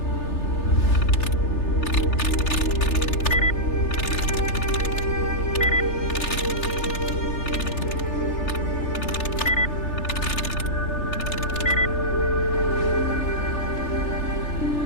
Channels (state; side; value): late; right; 3.3 ms